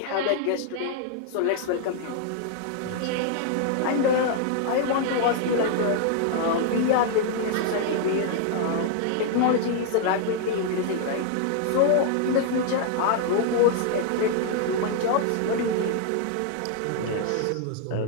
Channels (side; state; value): both; different; correlation -0.01